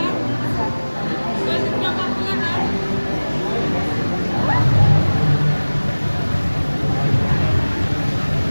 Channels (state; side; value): inverted; both; correlation -1.00